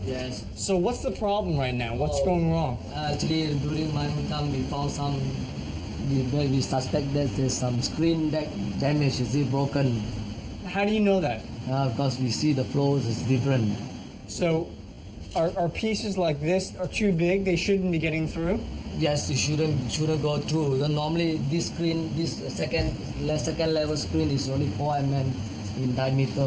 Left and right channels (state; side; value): identical; both; correlation 1.00